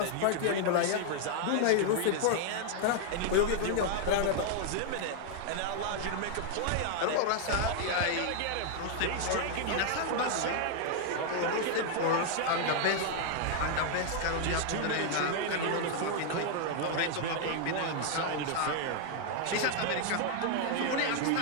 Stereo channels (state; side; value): different; both; correlation 0.00